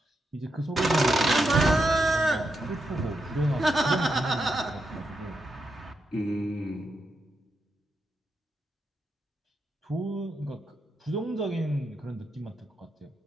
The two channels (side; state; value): both; normal; correlation 0.84